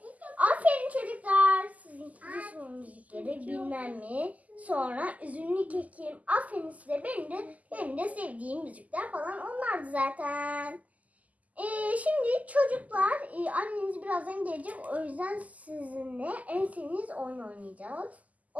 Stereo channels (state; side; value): late; left; 0.075 ms